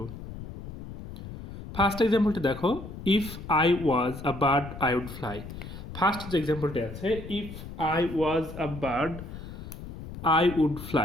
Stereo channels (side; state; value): left; noise; rumble, 11 dB below the sound